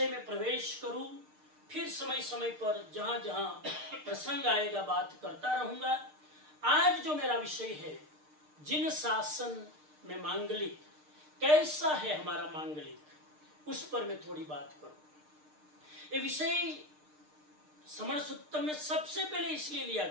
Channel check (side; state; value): left; late; 6.6 ms